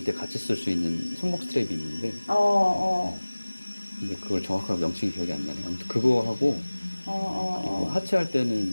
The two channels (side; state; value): both; inverted; correlation -1.00